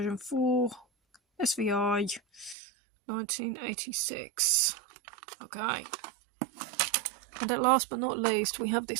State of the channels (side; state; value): left; drops out; at 2.6 s